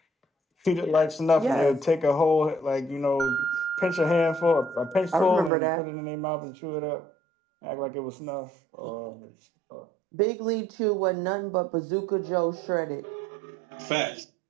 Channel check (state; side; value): drops out; left; at 5.5 s